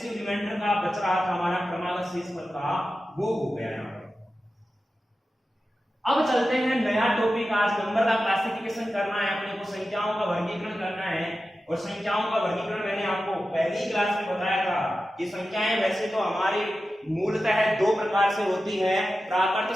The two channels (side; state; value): both; normal; correlation 0.93